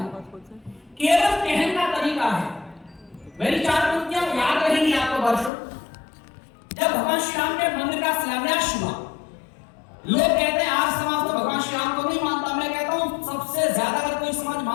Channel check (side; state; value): right; drops out; at 5.5 s